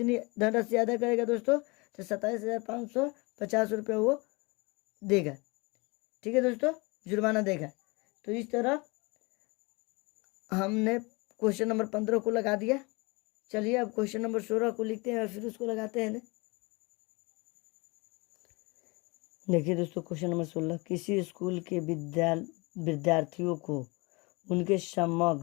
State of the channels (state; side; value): quieter; right; 27.0 dB